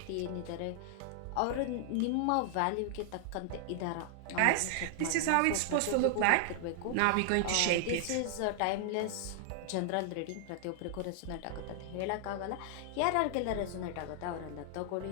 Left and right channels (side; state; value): both; different; correlation -0.01